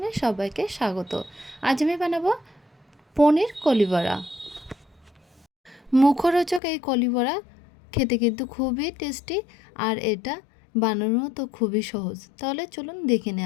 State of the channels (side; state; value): right; drops out; at 6.6 s